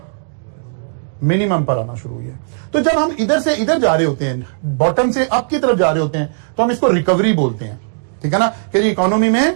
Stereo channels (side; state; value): left; silent; digital silence